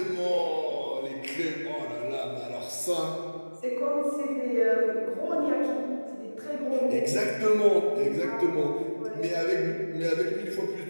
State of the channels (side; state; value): both; inverted; correlation -1.00